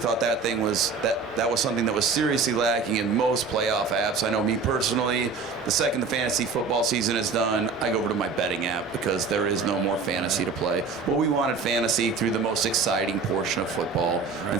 that thing was that was something that was seriously lacking in most playoff apps. I know me personally, the second the fantasy football season is done, I go over to my betting app because there is no more fantasy to play. Well, we wanted fantasy through the most exciting portion of football, and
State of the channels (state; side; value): quieter; left; 4.8 dB